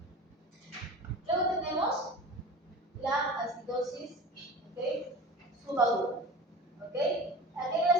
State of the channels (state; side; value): normal; both; correlation 0.36